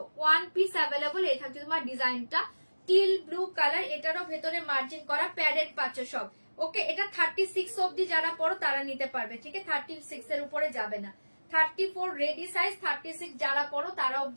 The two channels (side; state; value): both; inverted; correlation -1.00